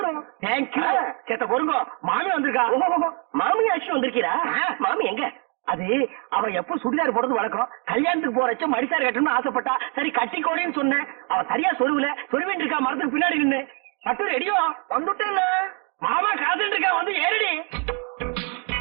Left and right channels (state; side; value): quieter; left; 37.0 dB